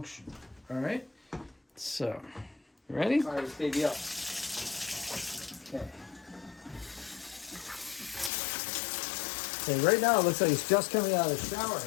All right. So, you ready? Fire this baby up. Okay. Okay. Right now it looks like it's just coming out of the shower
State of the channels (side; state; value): right; drops out; at 8.3 s